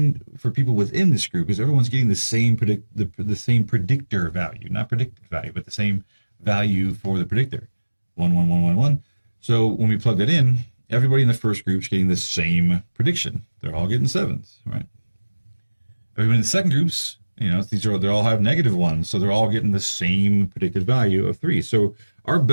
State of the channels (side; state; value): both; inverted; correlation -1.00